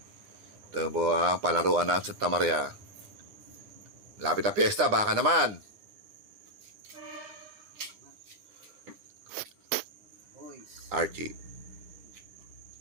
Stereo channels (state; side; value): late; left; 9.9 ms